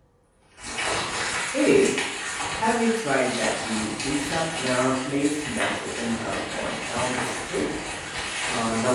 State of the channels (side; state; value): both; identical; correlation 1.00